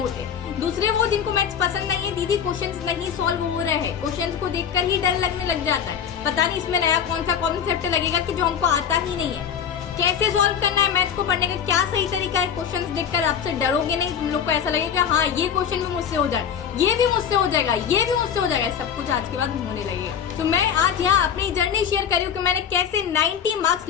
होते हैं। दूसरे वो जिनको मैथ्स पसंद नहीं है, दीदी क्वेश्चंस नहीं सॉल्व हो रहे हैं, क्वेश्चंस को देखकर ही डर लगने लग जाता है, पता नहीं इसमें नया कौन सा कॉन्सेप्ट लगेगा कि जो हमको आता ही नहीं है, कैसे सॉल्व करना है मैथ्स को पढ़ने का, क्या सही तरीका है। क्वेश्चंस देखकर आपसे डरोगे नहीं, तुम लोग को ऐसा लगेगा हाँ ये क्वेश्चन भी मुझसे हो जाए, ये भी मुझसे हो जाएगा, ये भी मुझसे हो जाएगा, सब कुछ आज के बाद होने लगेगा। तो मैं आज यहाँ अपनी जर्नी शेयर कर रही हूँ कि मैंने कैसे 90 मार्क्स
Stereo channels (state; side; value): quieter; right; 8.0 dB